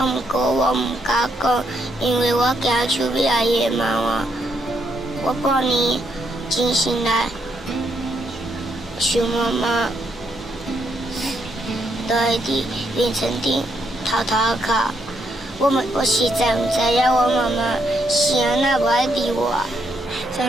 过我唔敢讲，因为我惊邱美阿姨会骂我。我半年真心来想妈妈，都会伫凌晨顶偷偷哭。我实在唔知影我妈妈是安那无爱理我。小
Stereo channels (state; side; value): normal; both; correlation 0.76